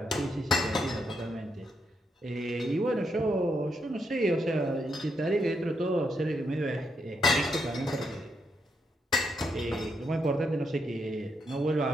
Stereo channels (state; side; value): normal; both; correlation 0.79